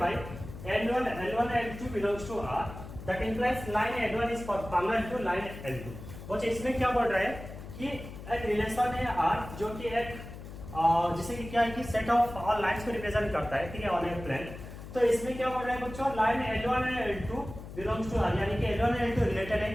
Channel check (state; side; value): noise; left; hum, 12 dB below the sound